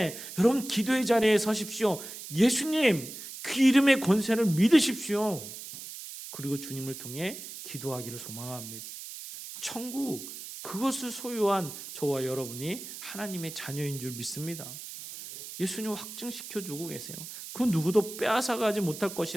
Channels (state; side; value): noise; right; hiss, 11 dB below the sound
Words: 여러분 기도의 자리에 서십시오. 예수님 그 이름의 권세를 믿으십시오. 그리고 주님을 통해 기도하기를 소망합니다. 천국 그것을 소유한 저와 여러분이 하나님의 자녀인 줄 믿습니다. 예수님 확증시켜주고 계세요. 그 누구도 빼앗아가지 못할